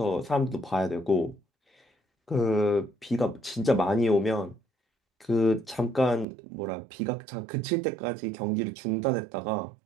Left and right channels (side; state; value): left; drops out; at 6.2 s